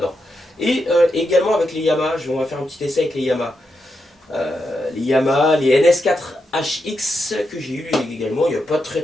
Et également avec les Yamaha, on va faire un petit essai avec les Yamaha. Les Yamaha, les NS4HX que j'ai eu également il n'y a pas très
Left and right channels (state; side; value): normal; both; correlation 0.85